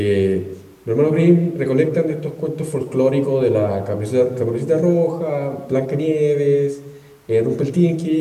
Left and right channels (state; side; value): identical; both; correlation 1.00